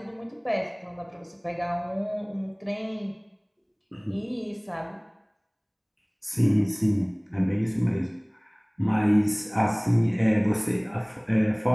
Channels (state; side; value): identical; both; correlation 1.00